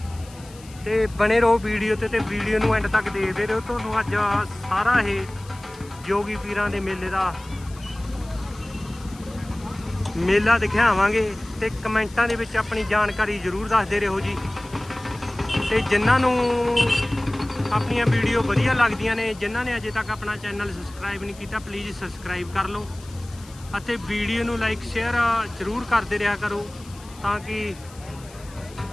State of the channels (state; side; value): noise; left; hiss, 22 dB below the sound